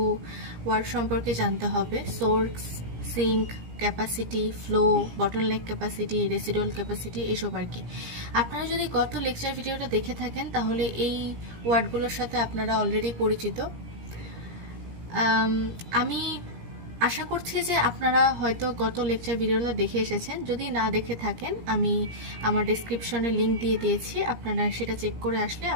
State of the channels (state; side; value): late; left; 17 ms